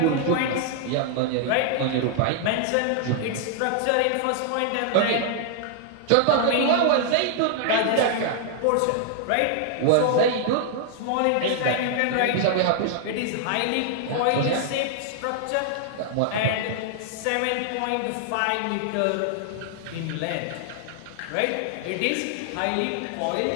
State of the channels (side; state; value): both; different; correlation 0.00